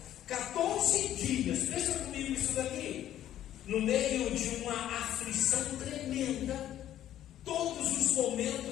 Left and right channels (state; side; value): quieter; right; 12.0 dB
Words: 14 dias, pensa comigo isso daqui, no meio de uma aflição tremenda, todos os